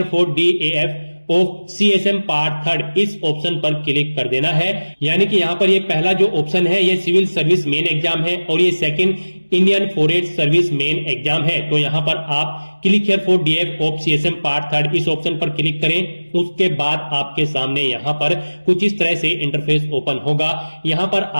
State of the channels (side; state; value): both; inverted; correlation -1.00